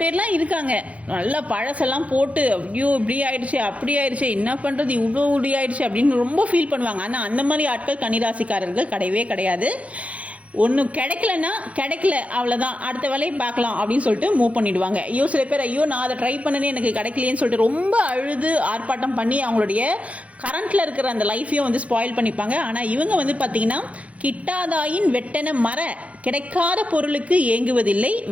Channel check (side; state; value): left; late; 0.065 ms